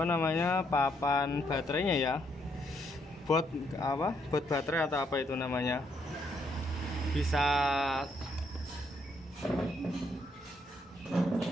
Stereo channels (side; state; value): both; normal; correlation 0.74